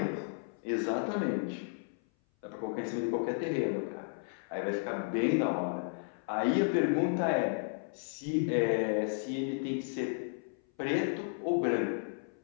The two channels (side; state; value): right; silent; 55 dB below the other